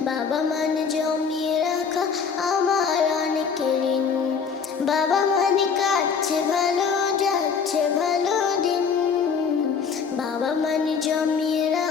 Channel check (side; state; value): right; quieter; 6.0 dB